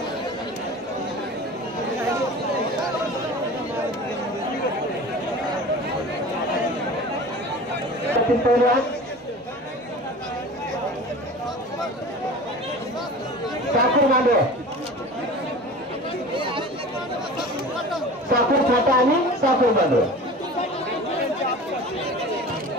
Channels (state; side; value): normal; both; correlation 0.38